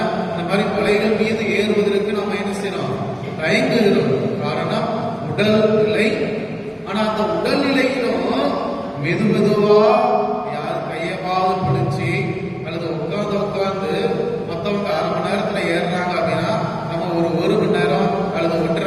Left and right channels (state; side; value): identical; both; correlation 1.00